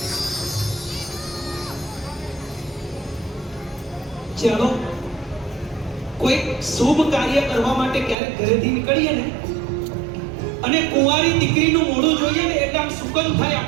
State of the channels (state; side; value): drops out; left; at 8.2 s